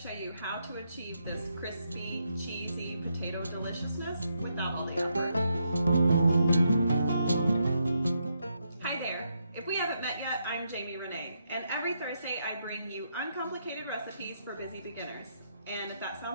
you how to achieve this crispy, cheesy potato deliciousness without all the effort. Hi there! If we haven't met yet, I'm Riene, and every Thursday I bring you uncomplicated recipes for busy beginners. And if that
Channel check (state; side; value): inverted; both; correlation -0.79